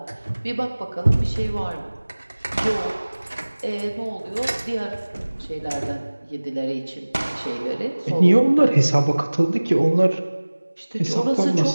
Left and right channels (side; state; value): both; inverted; correlation -1.00